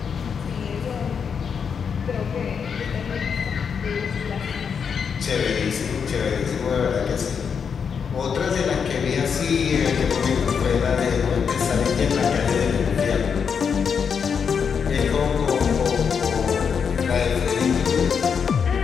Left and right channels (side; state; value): right; quieter; 6.6 dB